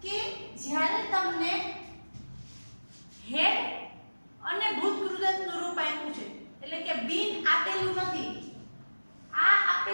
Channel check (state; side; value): inverted; both; correlation -1.00